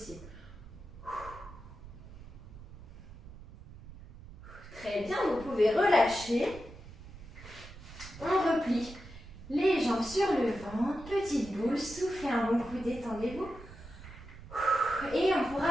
Très bien, vous pouvez relâcher. On replie les jambes sur le ventre, petite boule, soufflez un bon coup, détendez-vous. Et on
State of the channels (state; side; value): noise; right; rumble, 16 dB below the sound